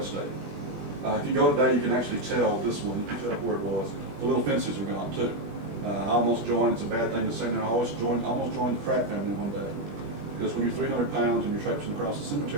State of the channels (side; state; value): left; late; 21 ms